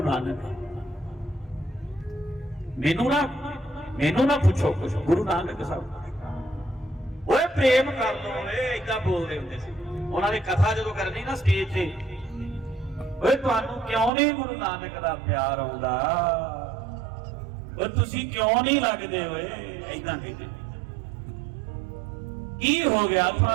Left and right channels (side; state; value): left; drops out; at 14.1 s